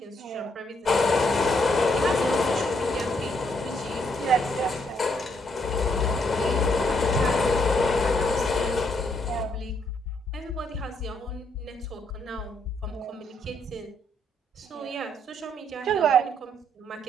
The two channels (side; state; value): both; normal; correlation 0.73